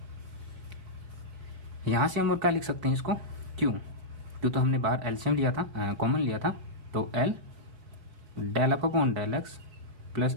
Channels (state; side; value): late; left; 4.2 ms